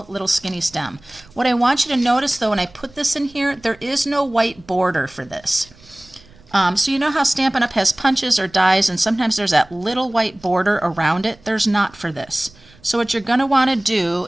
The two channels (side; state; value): right; noise; rumble, 26 dB below the sound